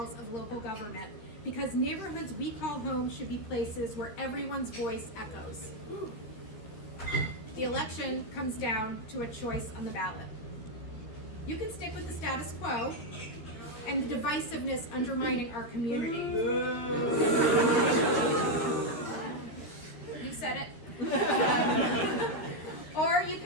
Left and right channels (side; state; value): right; late; 13 ms